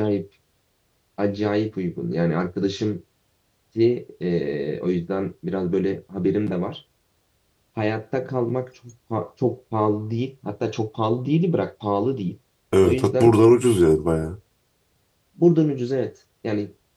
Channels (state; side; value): identical; both; correlation 1.00